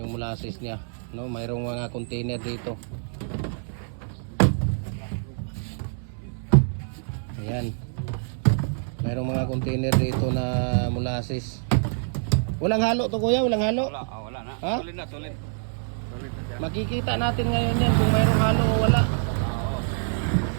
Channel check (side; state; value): left; silent; digital silence